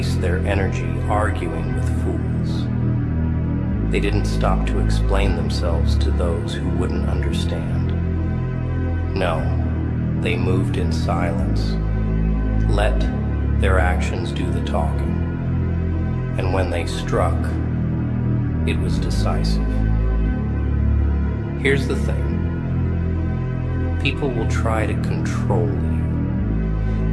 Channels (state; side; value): identical; both; correlation 1.00